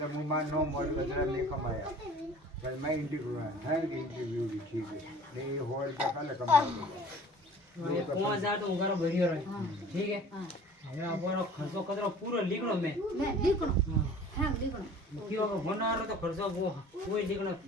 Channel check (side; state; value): both; normal; correlation 0.47